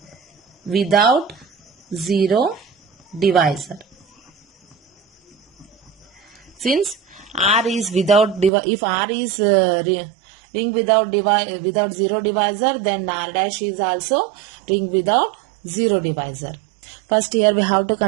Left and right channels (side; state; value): left; drops out; at 8.5 s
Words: without zero divisor. Since R is without if R is ring without zero divisor, then R dash is also ring without zero divisor. First here we have to